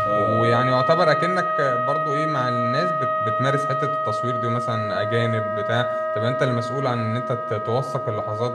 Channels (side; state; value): both; identical; correlation 1.00